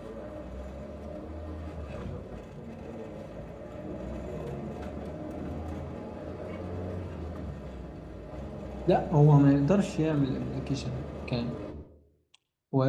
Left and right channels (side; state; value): both; identical; correlation 1.00